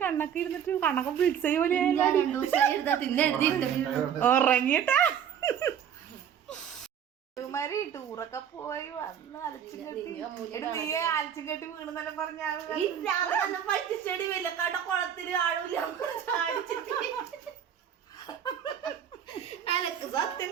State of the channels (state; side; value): quieter; left; 8.8 dB